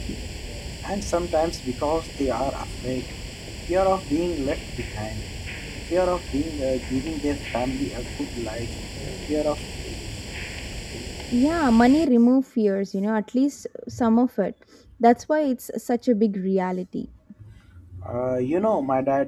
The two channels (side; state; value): both; identical; correlation 1.00